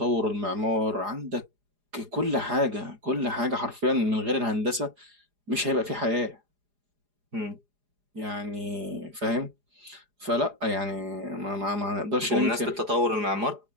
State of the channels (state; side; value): late; left; 4.9 ms